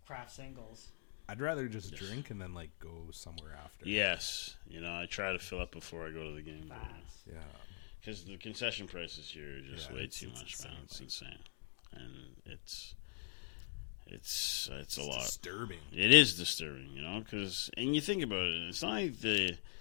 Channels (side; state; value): right; silent; digital silence